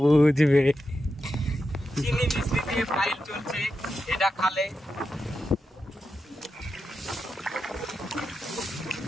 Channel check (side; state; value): both; normal; correlation 0.88